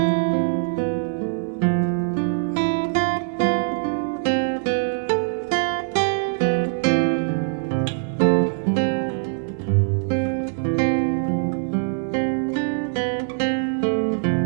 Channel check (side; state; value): left; silent; digital silence